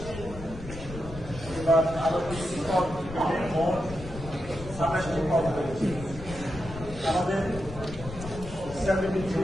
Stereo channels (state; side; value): noise; left; rumble, 12 dB below the sound